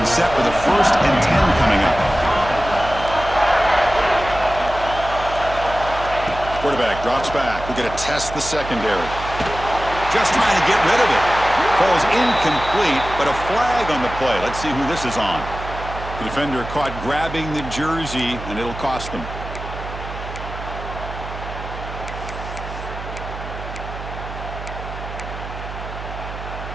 set with a 1st and 10 coming up. Quarterback drops back. We're going to test the secondary. Just trying to get rid of it. Falls incomplete, but a flag on the play. Let's see who this is on. The defender caught grabbing the jersey, and it'll cost them.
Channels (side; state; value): right; noise; hum, 10 dB below the sound